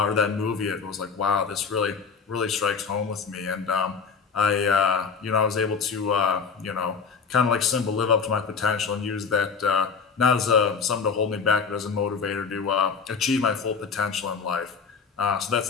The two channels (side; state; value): right; quieter; 5.6 dB